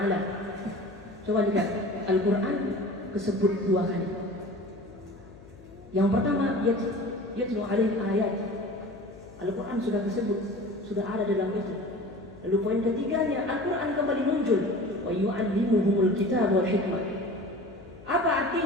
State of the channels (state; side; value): noise; left; hum, 21 dB below the sound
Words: Coba lihat, Al-Quran disebut 2 kali. Yang pertama, yatlu alaihim ayat. Al-Quran sudah disebut, sudah ada dalam itu. Lalu poin ketiganya, Al-Quran kembali muncul, wa yu'allimuhumul kitab wal hikmah. Apa